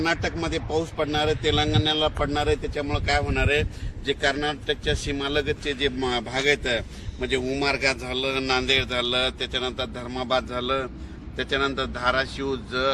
पाऊस पडणार आहे, तेलंगणाला पडणार आहे. त्याच्यामुळे काय होणार आहे, जे कर्नाटकच्या सीमालगतचे जे भाग आहेत म्हणजे उमरगा झालं, नांदेड झालं, त्याच्यानंतर धर्माबाद झालं, त्याच्यानंतर धाराशिव,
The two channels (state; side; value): identical; both; correlation 1.00